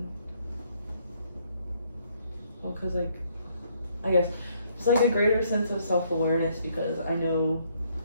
because like I guess it's like a greater sense of self-awareness because I know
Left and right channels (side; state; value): both; inverted; correlation -0.69